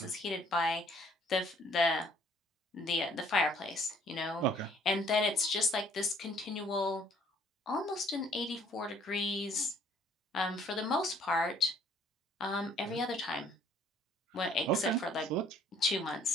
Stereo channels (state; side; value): normal; both; correlation 0.60